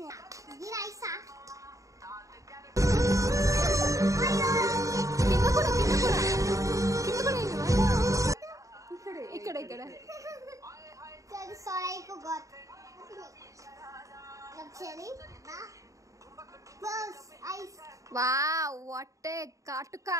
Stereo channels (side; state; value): left; late; 0.16 ms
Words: గిరైసా. కింద కూడా కింద కూడా కింద కూడా ఇక్కడ ఇక్కడ. Sorry, I forgot. Actually, close eyes. Wow, what ఏ కాటుకా.